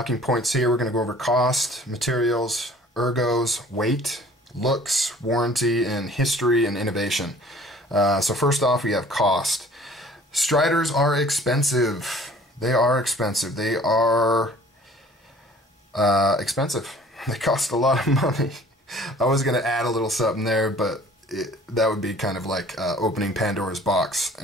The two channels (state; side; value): normal; both; correlation 0.51